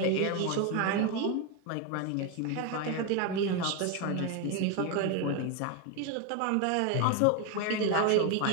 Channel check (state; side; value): different; both; correlation 0.02